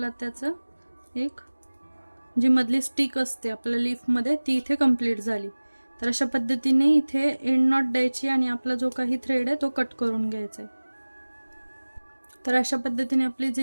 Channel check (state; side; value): inverted; both; correlation -1.00